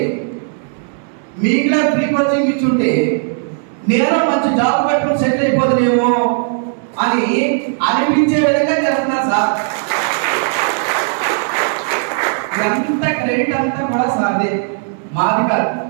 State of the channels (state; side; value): silent; left; 61 dB below the other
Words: మీకులా ఫ్రీ కోచింగ్ ఇచ్చుంటే నేను మంచి జాబ్ పెట్టుకుని సెటిల్ అయిపోతుందేమో అని అనిపించే విధంగా చేస్తున్నారు సార్. ఎంత క్రెడిట్ అంతా కూడా సార్దే, మాది కాదు.